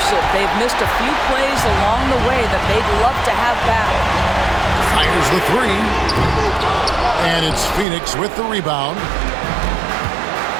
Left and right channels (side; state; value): left; drops out; at 7.9 s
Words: They've missed a few plays along the way that they'd love to have back. Fires the 3. And it's Phoenix with the rebound.